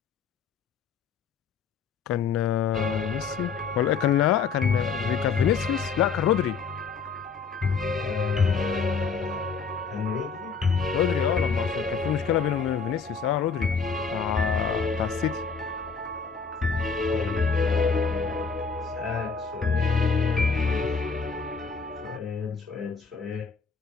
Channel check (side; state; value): right; quieter; 5.5 dB